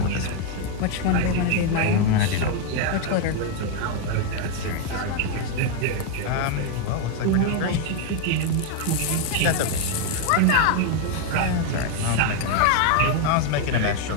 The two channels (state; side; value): different; both; correlation 0.01